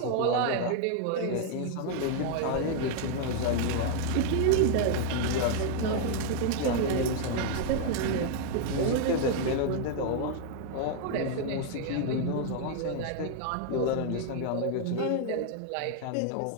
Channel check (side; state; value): both; different; correlation 0.00